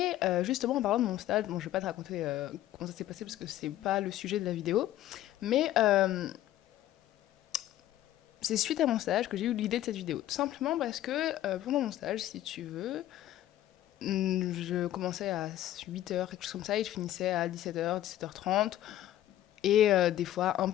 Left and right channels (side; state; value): right; quieter; 13.4 dB